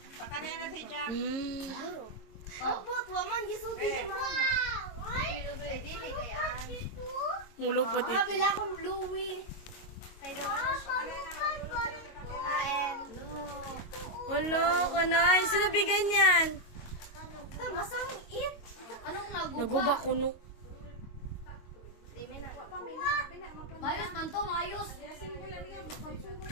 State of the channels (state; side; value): late; right; 22 ms